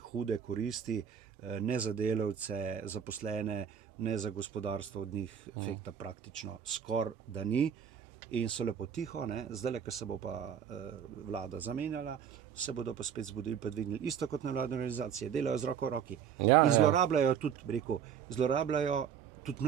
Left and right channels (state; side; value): quieter; left; 8.2 dB